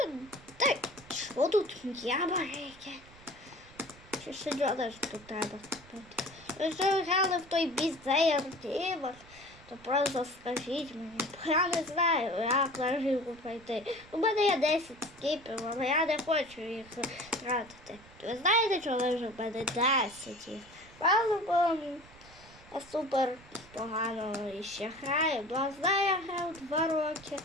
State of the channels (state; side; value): noise; right; rumble, 23 dB below the sound